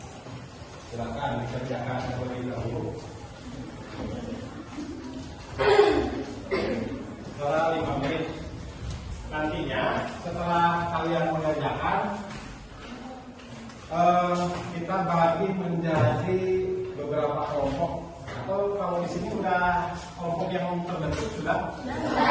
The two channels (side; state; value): both; identical; correlation 1.00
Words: Silakan dikerjakan terlebih dahulu. Setelah 5 menit. Nantinya setelah kalian mengerjakan, kita bagi menjadi beberapa kelompok. Atau kalau di sini sudah kelompok yang terbentuk sudah?